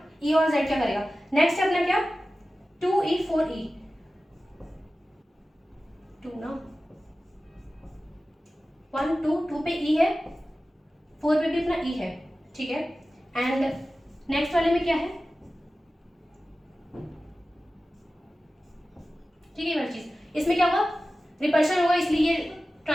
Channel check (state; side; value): normal; both; correlation 0.95